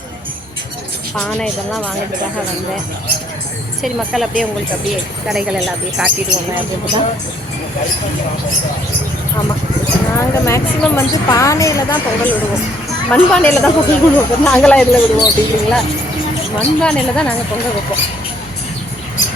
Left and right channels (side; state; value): both; normal; correlation 0.66